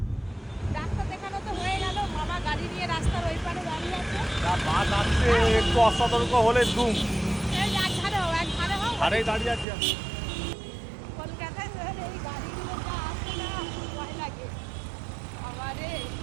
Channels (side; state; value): left; drops out; at 9.7 s